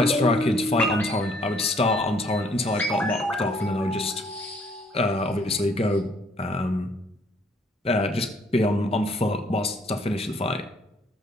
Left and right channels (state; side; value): normal; both; correlation 0.63